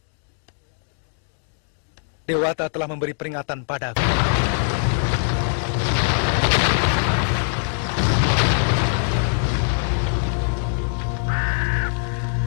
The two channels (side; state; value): right; silent; digital silence